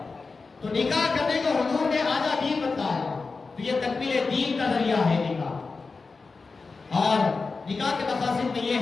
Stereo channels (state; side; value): quieter; right; 4.2 dB